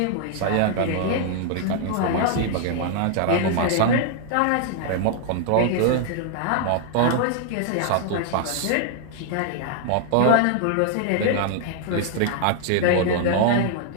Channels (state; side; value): different; both; correlation 0.00